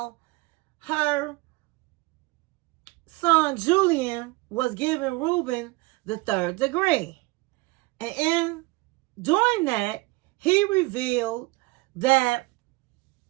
her son Julian was giving Ruben the 3rd degree. And in doing that, he revealed that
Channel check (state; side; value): quieter; left; 23.2 dB